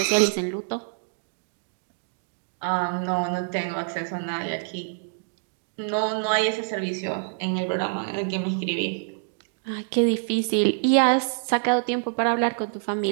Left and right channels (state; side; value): silent; left; digital silence